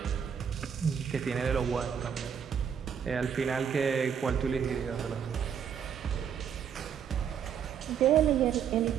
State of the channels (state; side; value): quieter; left; 7.9 dB